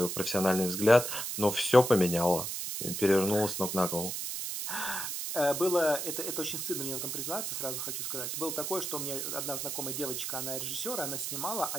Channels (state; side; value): noise; right; hiss, 3 dB below the sound